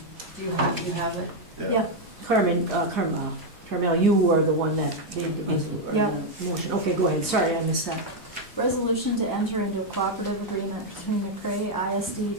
you have it? Yeah. Carmel, you were the one that made the Yeah. motion. Okay, go ahead. Sorry, I missed that. Resolution to enter into a cooperative agreement between McCray ISD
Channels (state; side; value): normal; both; correlation 0.01